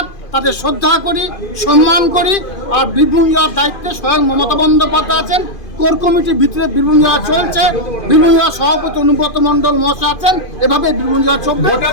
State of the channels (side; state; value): right; late; 2.5 ms